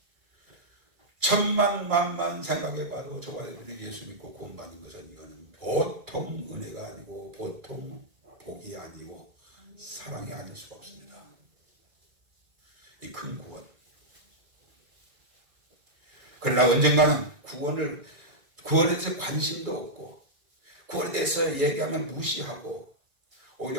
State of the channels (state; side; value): late; left; 2.3 ms